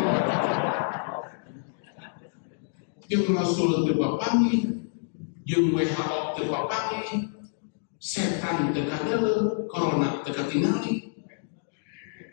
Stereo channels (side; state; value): right; silent; digital silence